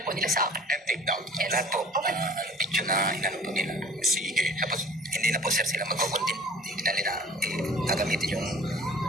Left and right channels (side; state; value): both; normal; correlation 0.47